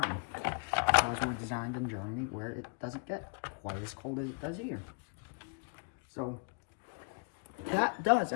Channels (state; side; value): quieter; right; 39.1 dB